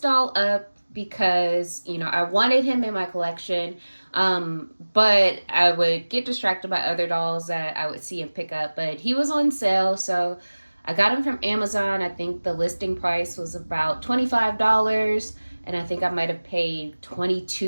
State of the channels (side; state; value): both; inverted; correlation -1.00